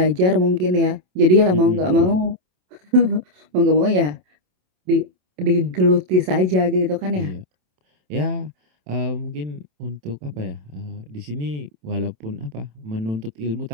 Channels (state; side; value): late; left; 27 ms